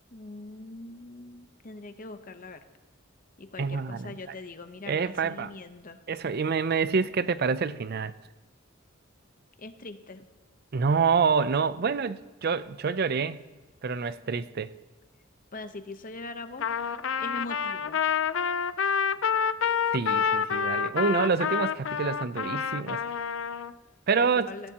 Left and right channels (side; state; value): both; normal; correlation 0.00